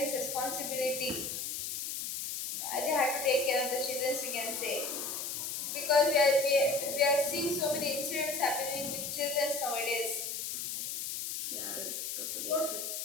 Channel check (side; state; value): left; noise; hiss, 4 dB below the sound